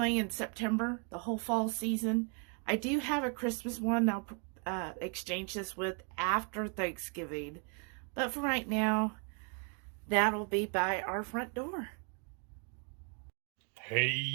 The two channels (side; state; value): left; quieter; 37.5 dB